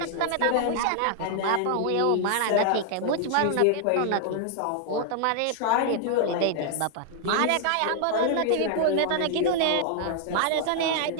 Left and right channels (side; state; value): both; different; correlation 0.00